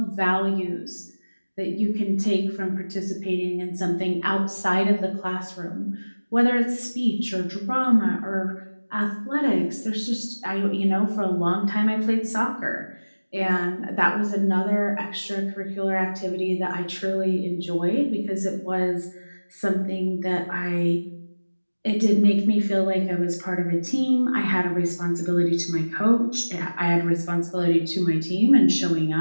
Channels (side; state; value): both; inverted; correlation -1.00